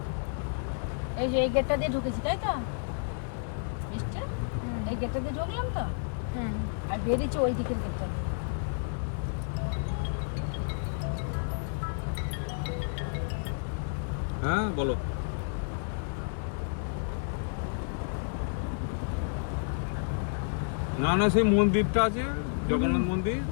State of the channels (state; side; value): silent; right; 57 dB below the other